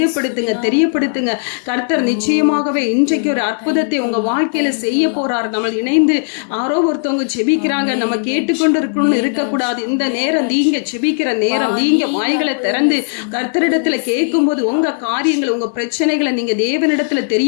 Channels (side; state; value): right; silent; digital silence